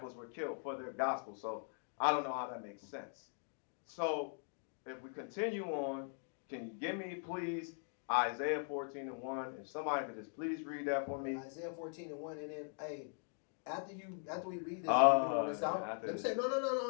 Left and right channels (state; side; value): silent; right; 51 dB below the other